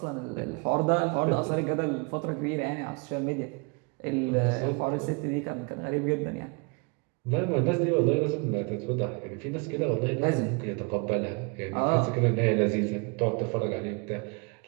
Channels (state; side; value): quieter; left; 32.8 dB